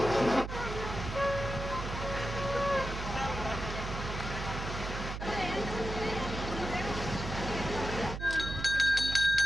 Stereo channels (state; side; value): noise; right; hum, 6 dB below the sound